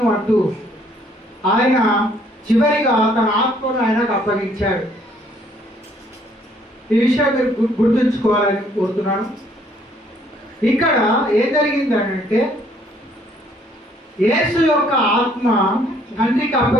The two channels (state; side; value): normal; both; correlation 0.64